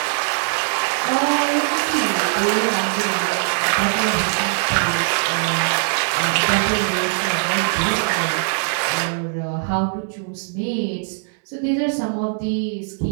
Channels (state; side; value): silent; left; 65 dB below the other